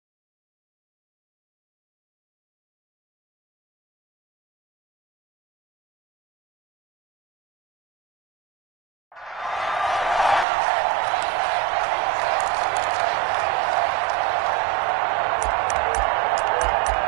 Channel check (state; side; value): drops out; left; at 10.5 s